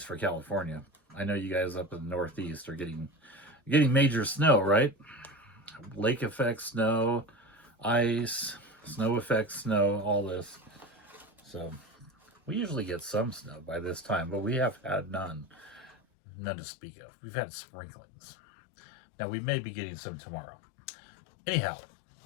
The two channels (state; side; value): drops out; right; at 16.0 s